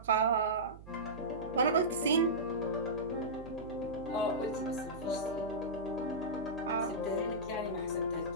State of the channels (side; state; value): right; noise; hum, 16 dB below the sound